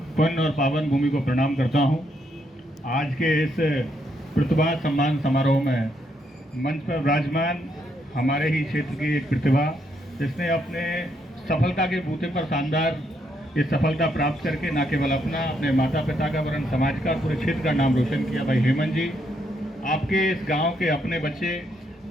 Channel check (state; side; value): normal; both; correlation 0.76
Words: पुण्य और पावन भूमि को प्रणाम करता हूं। आज के इस प्रतिभा सम्मान समारोह में मंच पर विराजमान हमारे ही क्षेत्र की एक प्रतिभा जिसने अपने सफलता के बूते पर शानदार ये सफलता प्राप्त करके न केवल अपना, अपने माता पिता का वरन समाज का, पूरे क्षेत्र का नाम रोशन किया। भाई हेमंत जी, आपके इस गांव के अपने बच्चे